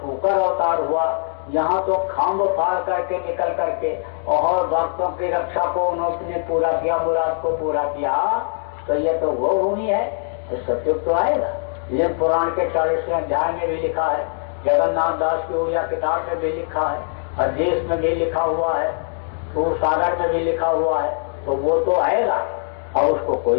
शुकर अवतार हुआ, यहाँ तो खम्भ फाड़ करके निकल करके और भक्तों की रक्षा को उन्होंने पूरा किया, मुराद को पूरा किया। तो ये तो वो भूमि है, तो सतयुग तो आएगा। ये पुराण के 40वें अध्याय में भी लिखा है, जगन्नाथ दास की उड़िया किताब में भी लिखा है, अध्येश में भी लिखा हुआ है, सूर सागर में भी लिखा हुआ है। तो वो तो आएगा और उसको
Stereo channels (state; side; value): silent; right; digital silence